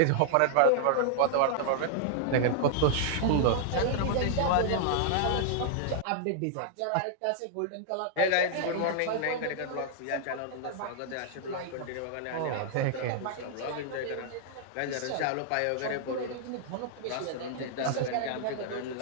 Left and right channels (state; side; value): different; both; correlation -0.01